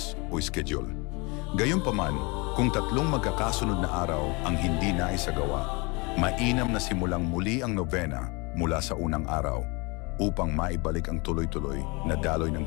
o schedule. Gayunpaman, kung tatlong magkakasunod na araw ang hindi naisagawa, mainam na simulang muli ang novena mula sa unang araw upang maibalik ang tuloy-tuloy na daloy ng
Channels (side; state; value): right; quieter; 28.2 dB